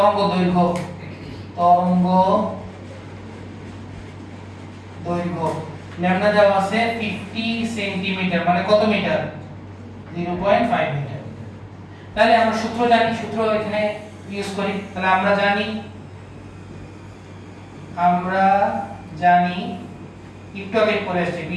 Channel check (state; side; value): identical; both; correlation 1.00